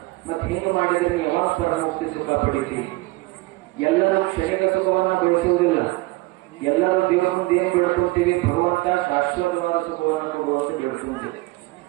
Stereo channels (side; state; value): left; quieter; 21.8 dB